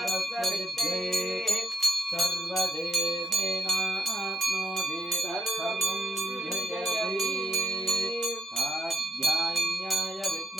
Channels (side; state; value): both; normal; correlation 0.79